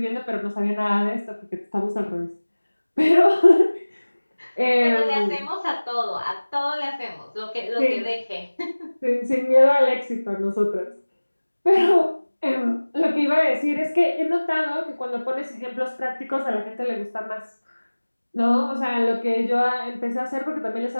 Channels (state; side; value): inverted; both; correlation -1.00